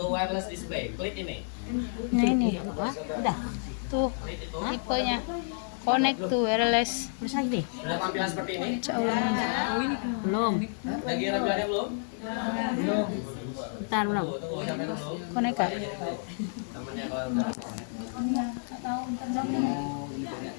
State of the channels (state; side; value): silent; right; 58 dB below the other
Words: wireless display. Klik ini. Nah ini, udah. Tuh, Klik itu. tipenya connect to wireless. Udah tampilan seperti ini. Belum. Lagi tampilannya belum? Bentar belum. Tunggu, jangan belum. Connect kak. Namanya kalau udah